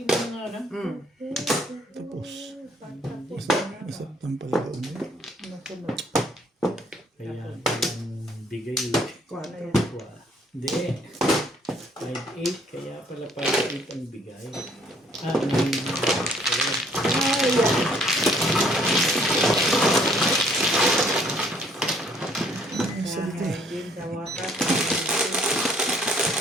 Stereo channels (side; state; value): both; normal; correlation 0.62